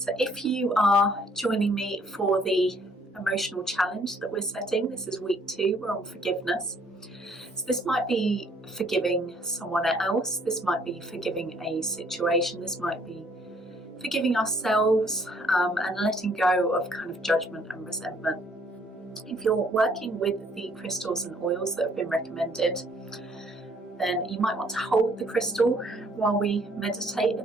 if you are joining me for the emotional challenge that we're setting, this is week 2, we're on forgiveness. So this might be forgiving someone else, this might be forgiving a situation, this might be forgiving ourselves and letting go of kind of judgment and resentment. If you're working with the crystals and oils that have been recommended, then you might want to hold the crystal while we meditate at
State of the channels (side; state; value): both; normal; correlation 0.63